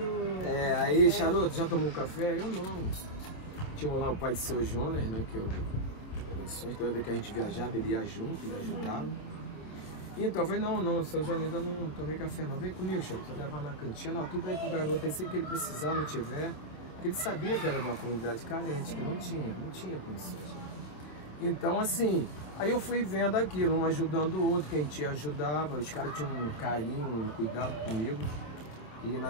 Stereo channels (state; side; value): late; right; 26 ms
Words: Aí, Charuto, já tomou um café? Eu não. Tinha lá o pai de seu Jonas, né? Que eu, toda vez que a gente viajava, ele ia junto, ele ajudava. Então eu falei, não, seu Jonas, eu não tomei café não. Vem comigo, Charuto, você levar na cantina, tudo aí pro garoto, aí sempre que ele precisar, não tiver. Porque ele sabia que era de uma comunidade carente, que não tinha condições. Então, assim, aí eu fui vendo aquilo, um ajudando o outro, quem te ajudava, os caras tinham um carinho, um cuidado comigo. E,